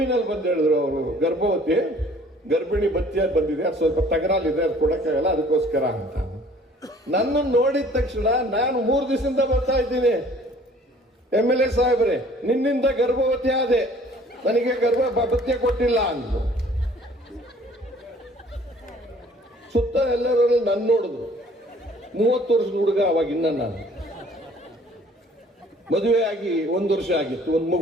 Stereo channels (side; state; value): both; normal; correlation 0.54